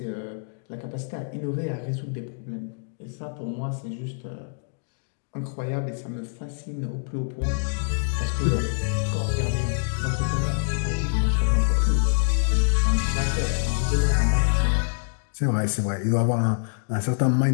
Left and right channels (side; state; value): right; silent; digital silence